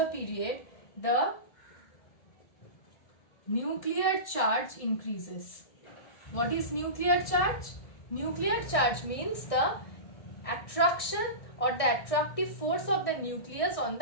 period, the nuclear charge increases. What is nuclear charge? Nuclear charge means the attraction or the attractive force of the nucleus on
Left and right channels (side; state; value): right; late; 1.7 ms